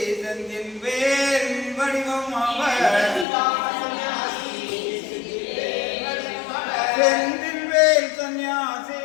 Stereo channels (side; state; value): right; drops out; at 3.2 s